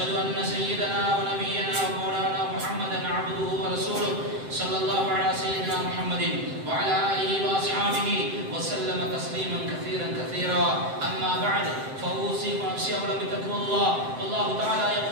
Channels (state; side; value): late; left; 7.7 ms